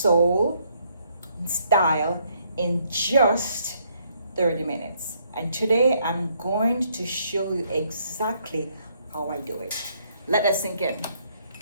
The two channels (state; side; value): inverted; both; correlation -0.70